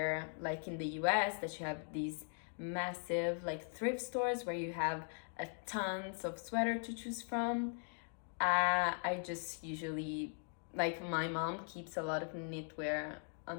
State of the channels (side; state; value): right; silent; 51 dB below the other